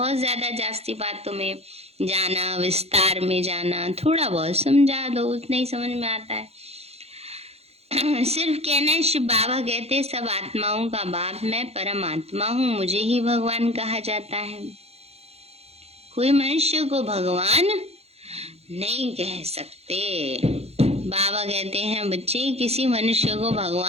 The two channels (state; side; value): late; left; 0.30 ms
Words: ज्यादा जास्ती बातों में जाना, विस्तार में जाना, थोड़ा बहुत समझा दो, उतना ही समझ में आता है। सिर्फ कहना है। शिव बाबा कहते सब आत्माओं का बाप मैं परमात्मा हूँ, मुझे ही भगवान कहा जाता है। कोई मनुष्य को भगवान नहीं कह सकते। बाबा कहते हैं बच्चे किसी मनुष्य को